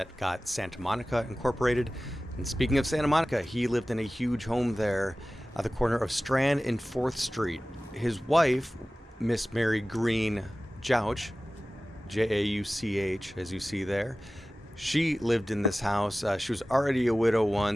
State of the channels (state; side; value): normal; both; correlation 0.96